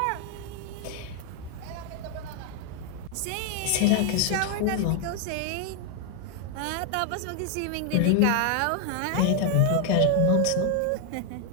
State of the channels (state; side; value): different; both; correlation 0.00